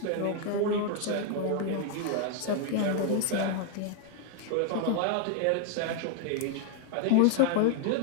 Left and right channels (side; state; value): both; different; correlation 0.00